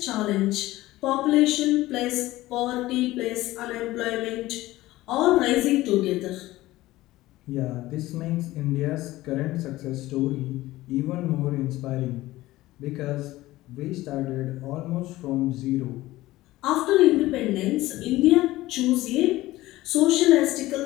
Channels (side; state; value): right; quieter; 17.4 dB